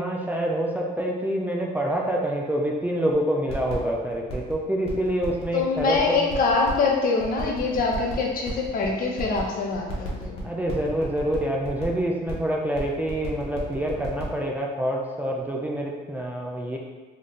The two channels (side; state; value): both; normal; correlation 0.52